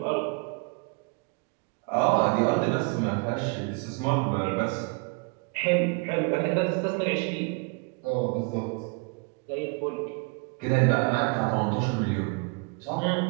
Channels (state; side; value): quieter; left; 31.9 dB